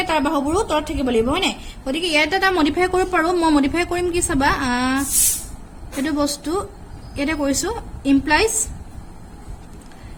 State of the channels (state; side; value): identical; both; correlation 1.00